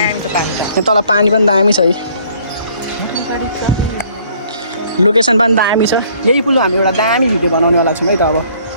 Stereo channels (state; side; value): inverted; both; correlation -0.60